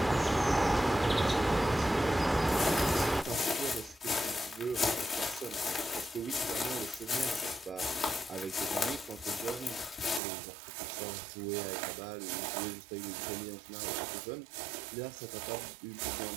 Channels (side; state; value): left; drops out; at 10.2 s